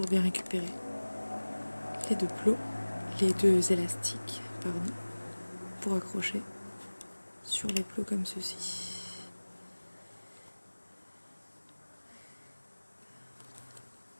bien récupérer les 2 plots, les 2 élastiques, pardon, pour accrocher sur les plots comme ceci.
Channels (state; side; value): inverted; both; correlation -1.00